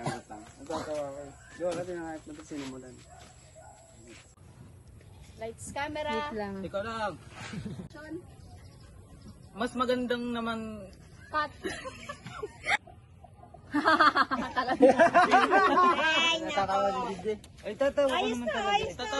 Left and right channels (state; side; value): identical; both; correlation 1.00